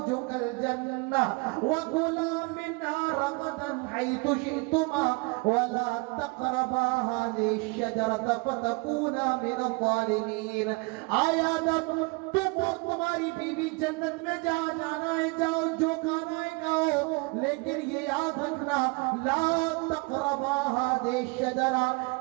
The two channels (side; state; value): left; quieter; 28.4 dB